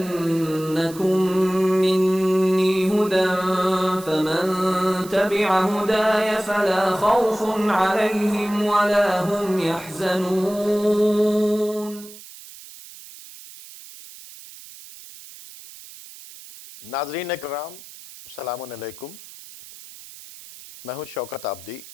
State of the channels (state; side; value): noise; right; hiss, 17 dB below the sound